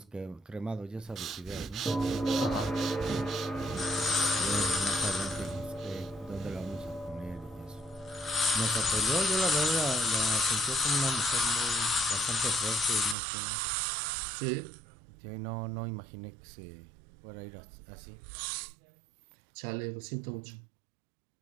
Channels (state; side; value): drops out; left; at 13.2 s